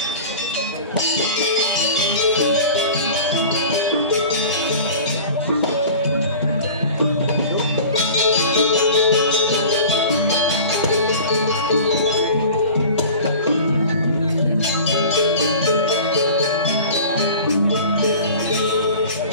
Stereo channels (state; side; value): inverted; both; correlation -0.39